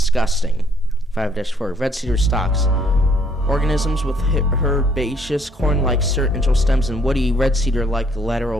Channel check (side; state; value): both; normal; correlation 0.65